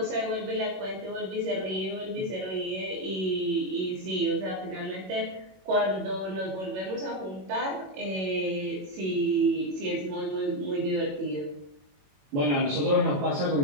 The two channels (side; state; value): left; late; 21 ms